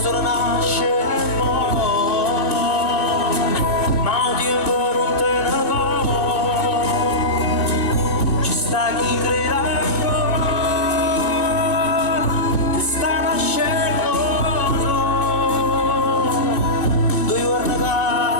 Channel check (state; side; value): late; right; 2.6 ms